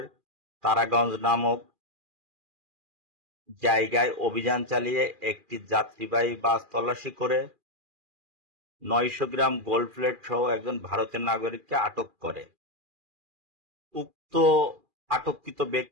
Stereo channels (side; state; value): left; late; 2.4 ms